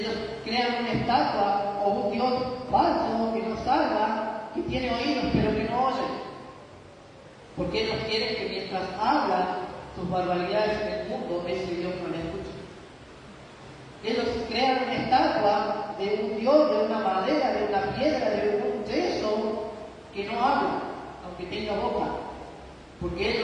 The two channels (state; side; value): identical; both; correlation 1.00